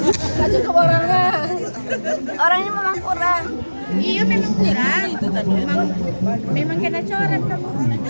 Nggak cukup orangnya. Orangnya memang kurang. Iya memang kurang. Memang kena coret kamu.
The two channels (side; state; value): both; inverted; correlation -1.00